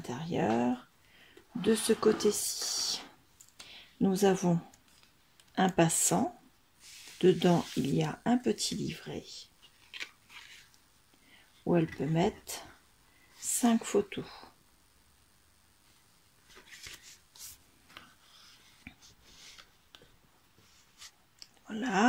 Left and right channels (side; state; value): both; identical; correlation 1.00